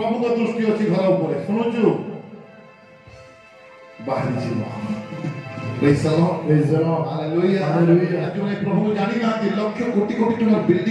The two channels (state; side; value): identical; both; correlation 1.00